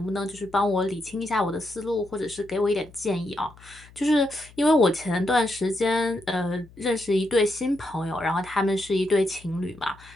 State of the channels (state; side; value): noise; left; hum, 23 dB below the sound